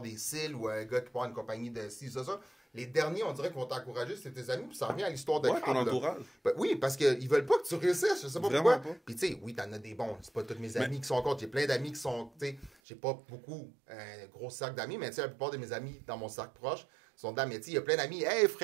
cils ou un gars qui part une compagnie de ci, ça. Les derniers, on dirait qu'ils vont t'encourager, c'est tes amis, puis ça revient à l'histoire de Ouais, ton crabe, entourage. Ben, oui, parce qu'ils veulent pas que tu réussisses, je sais pas Vraiment pourquoi. pas. Puis tu sais, oui, t'en as des bons, c'est pas tous mes amis qui sont contre, j'ai plein d'amis qui sont, tu sais, j'ai pas beaucoup, un gros cercle d'amis, mais tu sais, la plupart de mes amis dans mon cercle proche sont dans mais tu sais, il y a plein d'amis, hey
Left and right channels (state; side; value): drops out; left; at 12.7 s